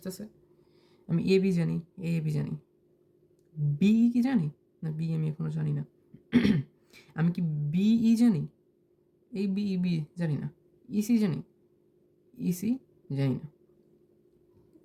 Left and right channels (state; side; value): identical; both; correlation 1.00